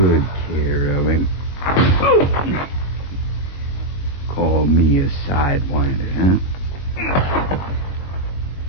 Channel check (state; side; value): late; right; 21 ms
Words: care of him. Call me a sidewinder, huh?